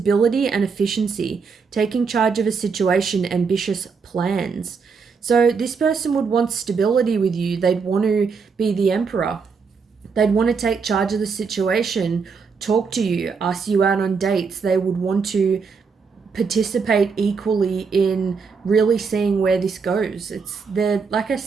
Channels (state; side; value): quieter; left; 5.4 dB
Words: and efficiency, taking charge of a situation, ambitious plans. So this person would want stability with you. They'd want to be the Emperor. They'd want to take charge of the situation, talk to you, ask you out on dates. They would want to participate equally in really seeing where this goes. Like I